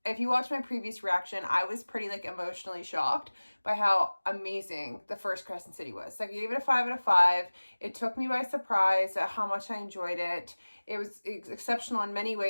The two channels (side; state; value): both; inverted; correlation -1.00